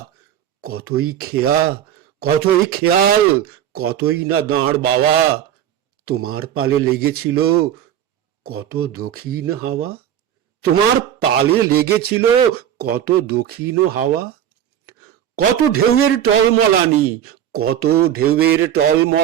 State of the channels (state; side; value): quieter; left; 10.4 dB